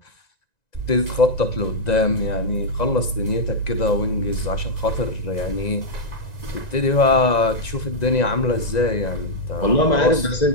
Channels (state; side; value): late; right; 1.9 ms